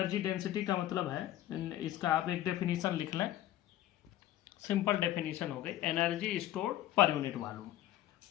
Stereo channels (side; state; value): right; quieter; 13.7 dB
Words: density का मतलब है, इसका आप एक डेफिनेशन लिख लें, सिंपल डेफिनेशन हो गई, energy stored per unit volume.